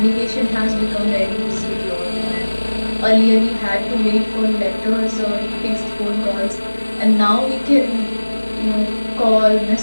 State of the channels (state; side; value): inverted; both; correlation -1.00